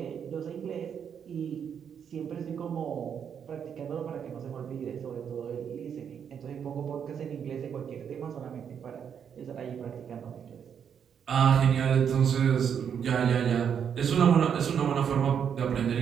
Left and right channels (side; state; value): left; quieter; 7.8 dB